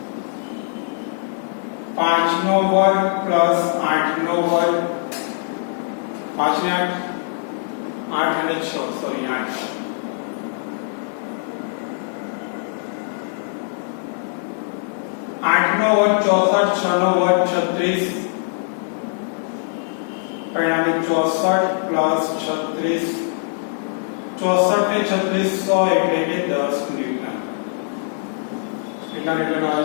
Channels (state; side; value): silent; right; digital silence